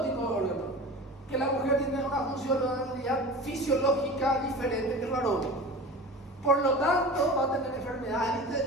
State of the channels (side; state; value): both; normal; correlation 0.35